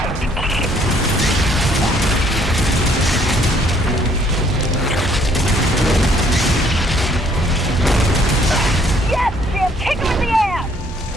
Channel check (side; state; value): both; normal; correlation 0.63